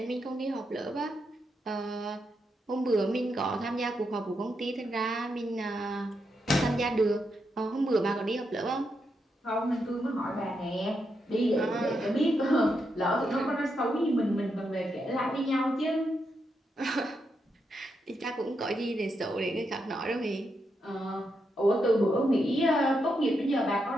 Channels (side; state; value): both; normal; correlation 0.83